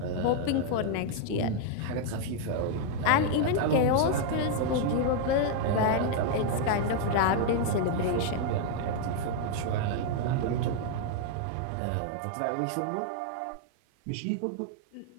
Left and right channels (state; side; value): different; both; correlation 0.00